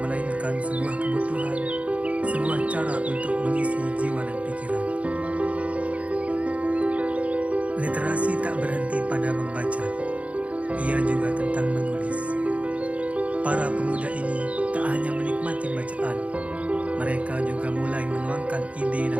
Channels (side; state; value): left; late; 0.065 ms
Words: sebuah kebutuhan, sebuah cara untuk mengisi jiwa dan pikiran. Literasi tak berhenti pada membaca, ia juga tentang menulis. Para pemuda ini tak hanya menikmati bacaan, mereka juga mulai menuangkan ide